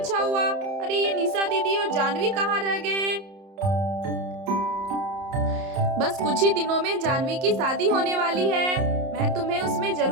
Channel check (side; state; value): left; late; 30 ms